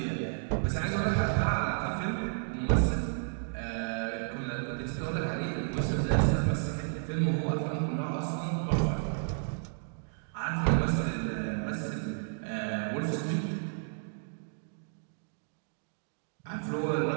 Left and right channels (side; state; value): left; silent; digital silence